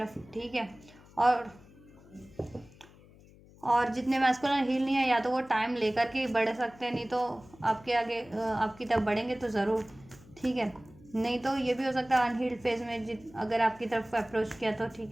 ठीक है। और जितने मैस्कुलिन हील नहीं है या तो वो टाइम लेकर के बढ़ सकते हैं, नहीं तो आपके आगे आपकी तरफ बढ़ेंगे तो ज़रूर, ठीक है। नहीं तो ये भी हो सकता है अनहील्ड फेज में अगर आपकी तरफ अप्रोच किया तो,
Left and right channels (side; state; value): left; noise; hum, 24 dB below the sound